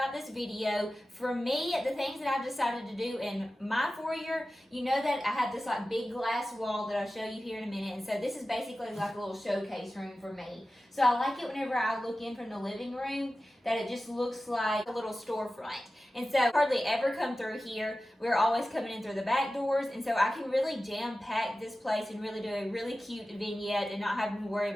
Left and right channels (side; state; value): both; normal; correlation 0.95